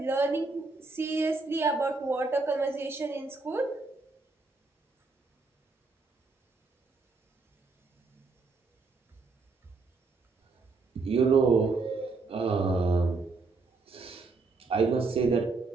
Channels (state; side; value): quieter; left; 3.9 dB